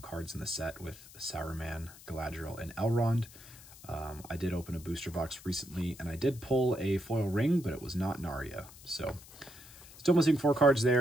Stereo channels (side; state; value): left; noise; hiss, 19 dB below the sound